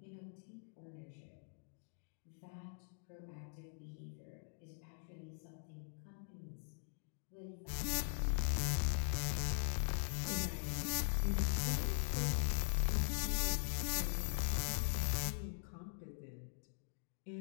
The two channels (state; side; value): silent; right; digital silence